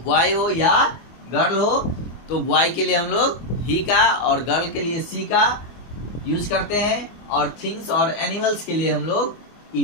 बॉय हो या गर्ल हो, तो बॉय के लिए हम लोग ही का और गर्ल के लिए सी का यूज करते हैं, और थिंग्स और एनिमल्स के लिए हम लोग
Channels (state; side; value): late; right; 24 ms